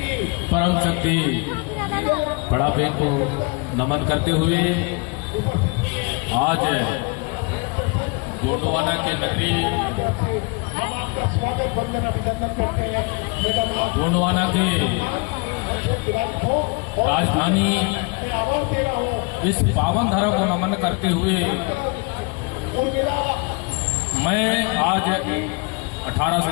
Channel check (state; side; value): quieter; right; 30.6 dB